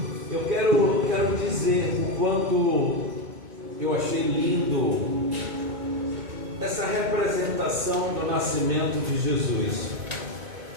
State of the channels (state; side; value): late; left; 2.2 ms